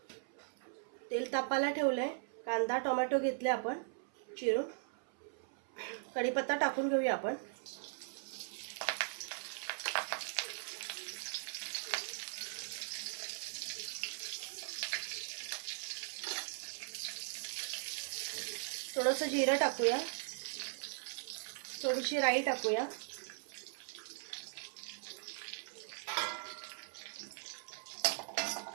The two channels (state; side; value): silent; left; 51 dB below the other